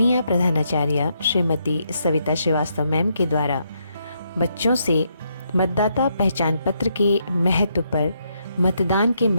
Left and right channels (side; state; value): both; inverted; correlation -0.77